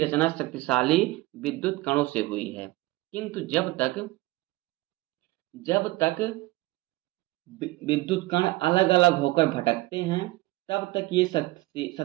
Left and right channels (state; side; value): quieter; left; 20.0 dB